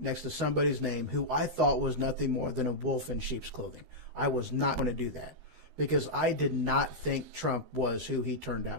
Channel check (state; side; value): late; left; 12 ms